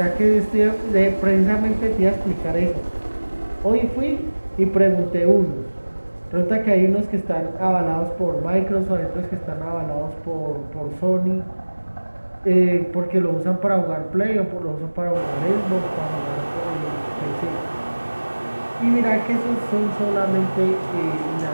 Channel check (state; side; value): inverted; both; correlation -1.00